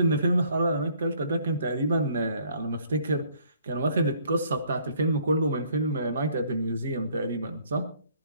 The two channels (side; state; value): both; inverted; correlation -0.62